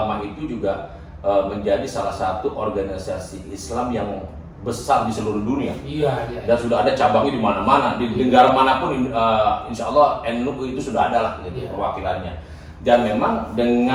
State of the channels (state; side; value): identical; both; correlation 1.00